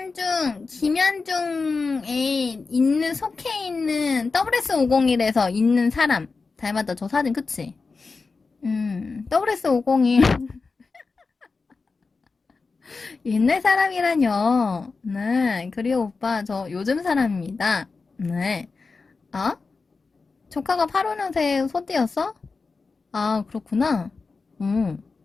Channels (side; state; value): right; quieter; 4.3 dB